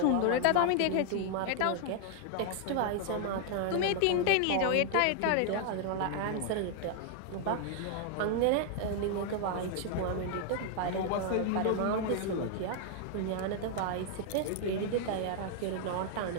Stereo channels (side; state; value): both; different; correlation 0.00